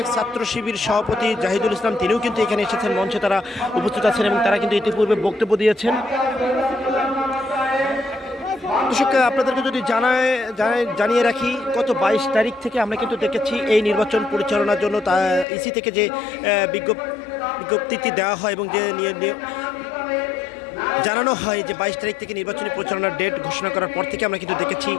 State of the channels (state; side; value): drops out; right; at 15.5 s